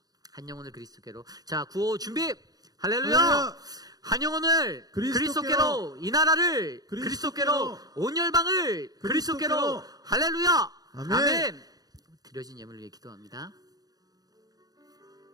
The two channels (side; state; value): left; late; 0.18 ms